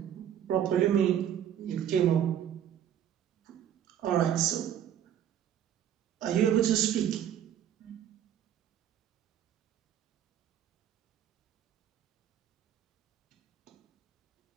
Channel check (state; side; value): quieter; left; 10.0 dB